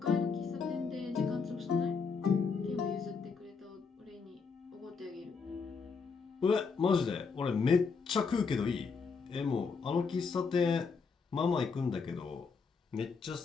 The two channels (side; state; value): right; quieter; 5.1 dB